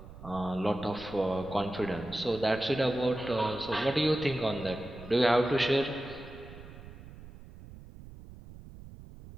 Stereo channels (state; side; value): noise; right; rumble, 16 dB below the sound